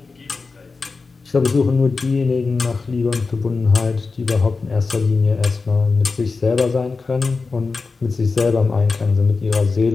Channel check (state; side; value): quieter; right; 4.3 dB